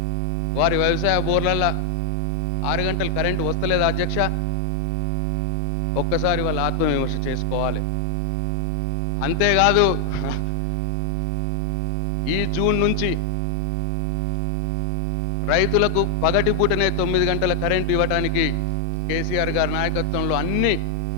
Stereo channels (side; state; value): both; normal; correlation 0.00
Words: వారి వ్యవసాయ బోర్లల్లో 6 గంటలు కరెంటు వస్తలేదు అధ్యక్ష? ఒక్కసారి వాళ్ళ ఆత్మవిమర్శ చేసుకోవాలి. అంతేకాదు, ఈ జూన్ నుంచి రైతులకు పగటిపూటనే 9 గంటల కరెంటు ఇవ్వడానికి కేసీఆర్ గారి నాయకత్వంలో అన్ని